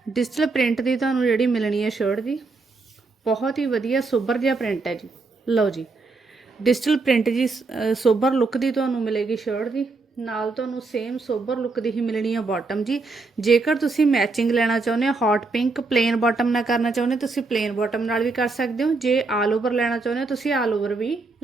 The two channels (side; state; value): left; quieter; 3.8 dB